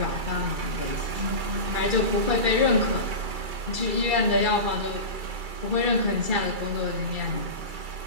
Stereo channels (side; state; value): left; late; 2.3 ms